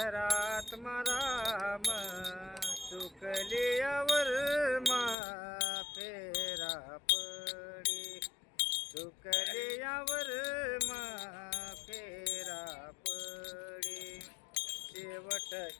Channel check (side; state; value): right; drops out; at 5.2 s